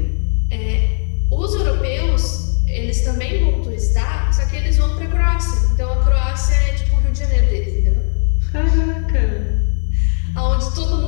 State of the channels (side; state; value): right; silent; digital silence